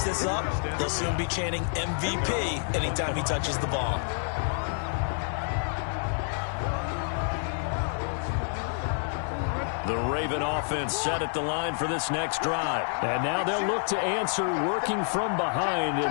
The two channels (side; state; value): right; silent; 59 dB below the other